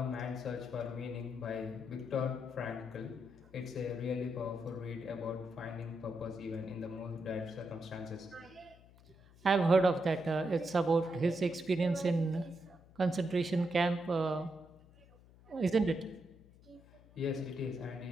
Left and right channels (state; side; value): noise; left; hum, 24 dB below the sound